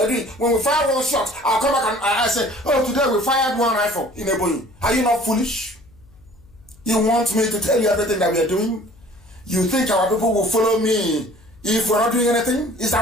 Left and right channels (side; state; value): left; noise; hum, 27 dB below the sound